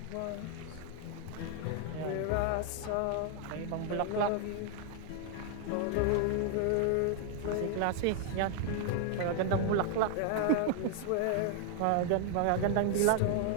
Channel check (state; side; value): different; both; correlation 0.00